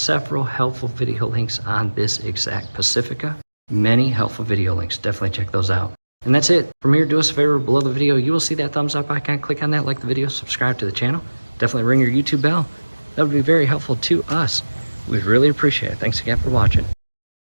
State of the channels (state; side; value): inverted; both; correlation -1.00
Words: helpful video links on this exact Pacifica. Many helpful video links, definitely check those out. And that's it. From here, do us a favor, below the video, you will see that thumbs up icon. Click on that, like the video, subscribe to the channel. Definitely ring your YouTube bell. That would be very helpful to us. We'd really appreciate it. Thanks again for watching.